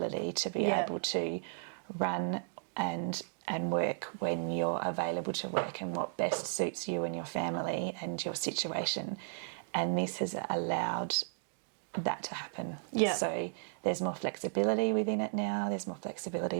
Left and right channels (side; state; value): left; silent; digital silence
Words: to be able to run and work when you're available to work and what best suits you and your family and your situation. And this has allowed that to happen. Yeah. So there's more flexibility within it now, there's more flexibility